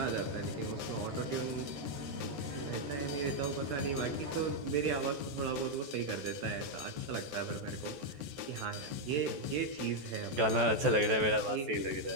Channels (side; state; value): left; late; 14 ms